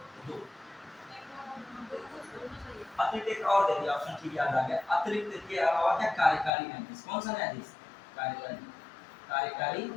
दो। अतिरिक्त एक और दे दिया ऑप्शन, ठीक याद आ गया। अतिरिक्त के अलावा क्या? कार्यकारी न्यायाधीश। कौन सा न्यायाधीश? कार्यकारी, कार्यकारी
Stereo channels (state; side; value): drops out; right; at 6.5 s